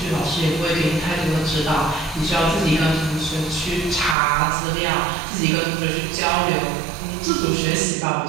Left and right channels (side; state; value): left; drops out; at 4.2 s